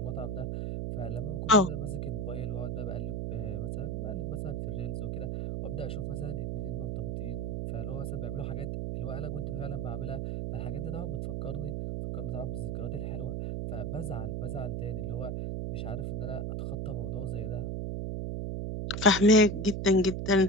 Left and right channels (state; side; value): noise; right; hum, 2 dB below the sound